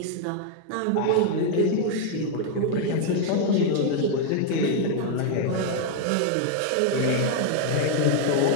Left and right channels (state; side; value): different; both; correlation 0.00